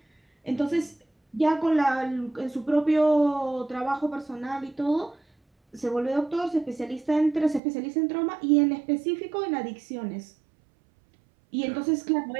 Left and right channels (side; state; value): left; drops out; at 7.6 s